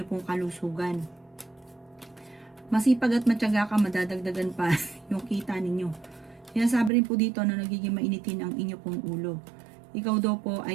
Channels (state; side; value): drops out; left; at 6.9 s